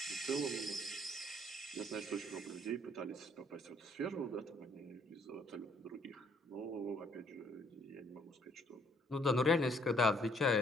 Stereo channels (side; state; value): both; normal; correlation 0.65